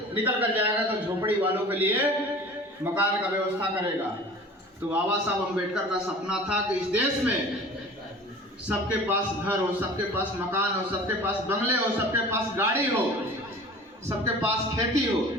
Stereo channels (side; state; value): both; normal; correlation 0.42